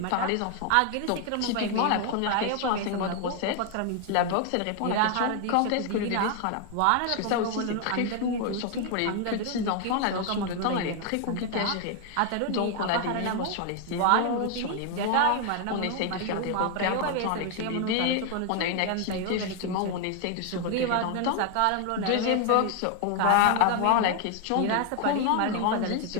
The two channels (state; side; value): different; both; correlation 0.00